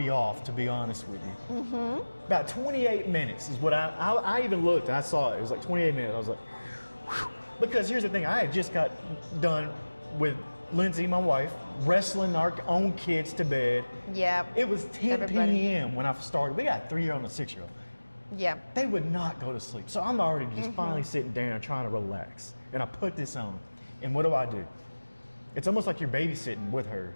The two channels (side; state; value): both; inverted; correlation -1.00